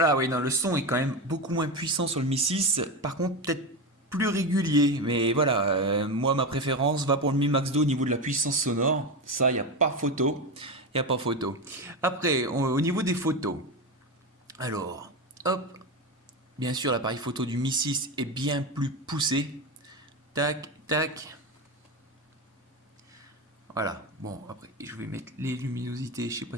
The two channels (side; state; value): both; normal; correlation 0.17